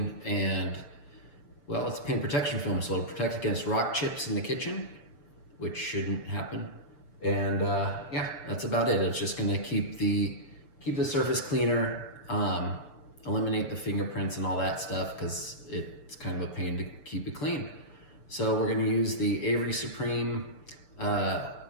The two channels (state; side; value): late; right; 6.8 ms